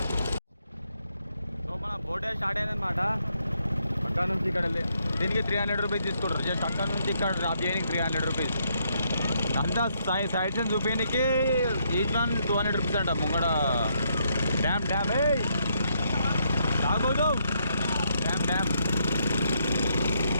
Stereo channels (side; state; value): both; inverted; correlation -0.75